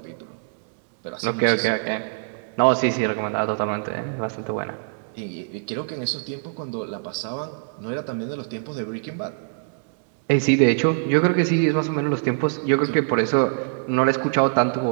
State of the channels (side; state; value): left; silent; digital silence